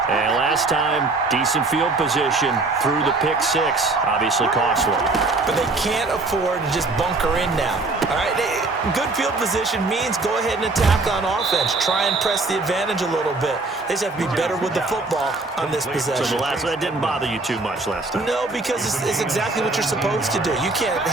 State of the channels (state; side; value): quieter; left; 3.4 dB